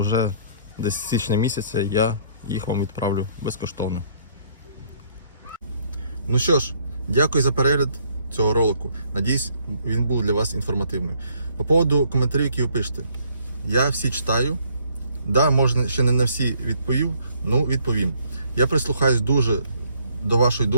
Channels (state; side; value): inverted; both; correlation -0.64